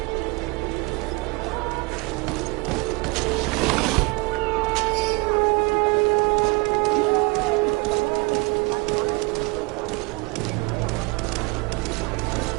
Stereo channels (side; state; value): left; quieter; 27.1 dB